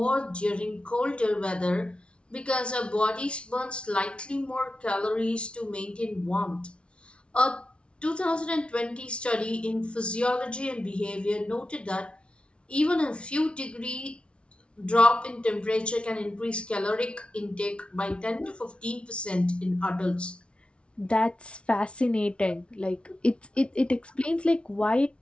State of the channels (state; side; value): late; right; 0.059 ms